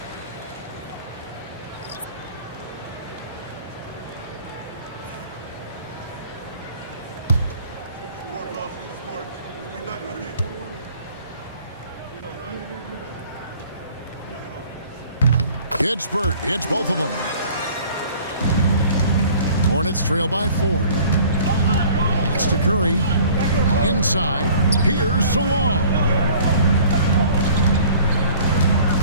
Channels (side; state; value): both; inverted; correlation -0.51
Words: Kispert hits both of them. Hornets trail by 4. Pass to Curry. Inside. Here's Salon.